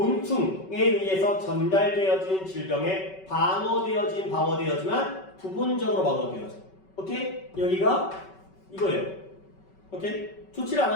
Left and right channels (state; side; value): late; right; 5.3 ms